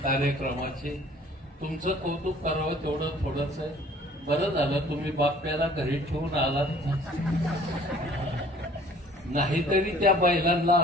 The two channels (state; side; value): normal; both; correlation 0.53